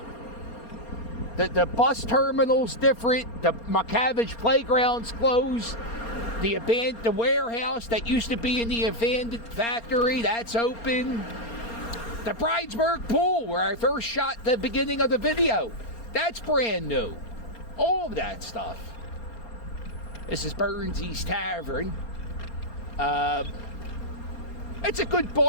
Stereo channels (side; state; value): right; late; 4.3 ms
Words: The bus terminal's different. The McCavish playground's closed. The warehouse that used to be in the abandoned factory, that's open. The Bridesburg pool, where I first shot the beginning of the video, that's brand new. All of that stuff. This is Burnsy's Tavern. It's a good